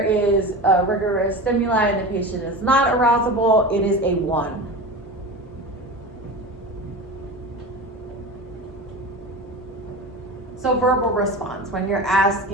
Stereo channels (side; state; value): both; normal; correlation 0.29